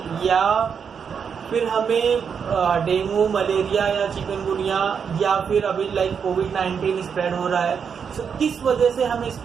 या फिर हमें डेंगू, मलेरिया या चिकनगुनिया, या फिर अभी लाइक कोविड-19 स्प्रेड हो रहा है. सो किस वजह से हमें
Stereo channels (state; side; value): quieter; left; 6.8 dB